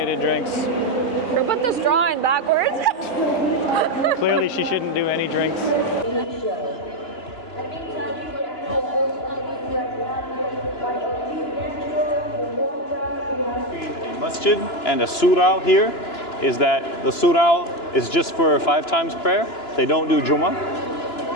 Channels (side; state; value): right; late; 2.9 ms